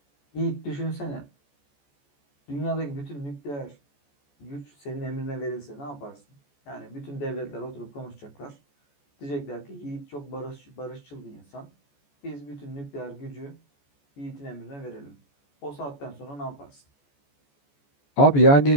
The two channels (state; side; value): late; right; 14 ms